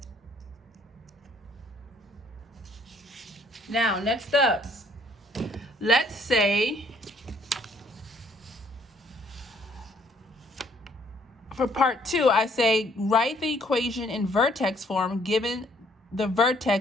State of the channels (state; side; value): normal; both; correlation 0.64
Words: Now, next up, let's say, for part 2, I say write the equation in vertex form given the